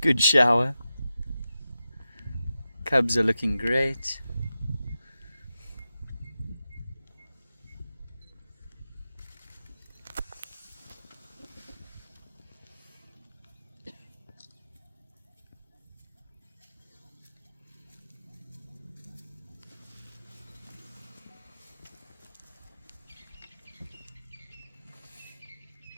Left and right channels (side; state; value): both; inverted; correlation -0.92